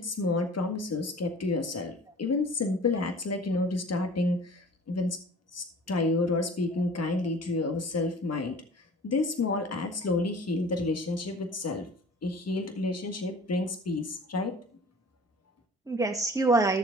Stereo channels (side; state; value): both; normal; correlation 0.45